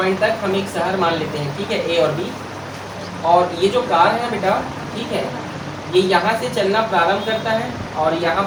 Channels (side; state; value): both; identical; correlation 1.00